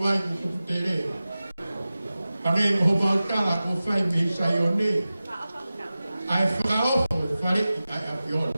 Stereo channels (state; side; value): inverted; both; correlation -0.96